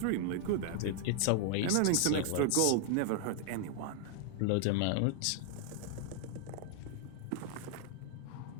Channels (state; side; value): different; both; correlation 0.00